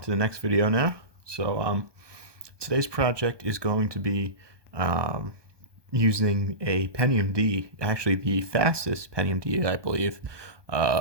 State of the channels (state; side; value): late; left; 1.2 ms